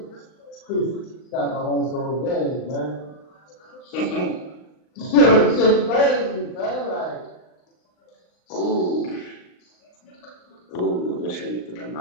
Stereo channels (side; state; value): right; late; 39 ms